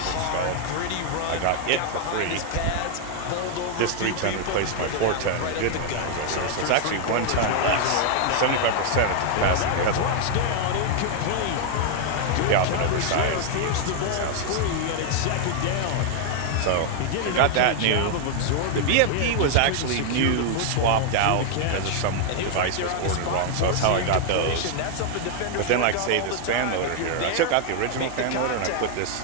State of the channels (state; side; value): different; both; correlation 0.00